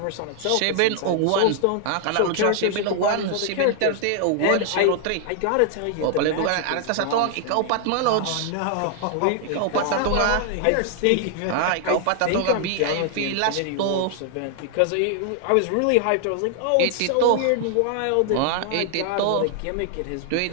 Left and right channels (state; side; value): different; both; correlation 0.00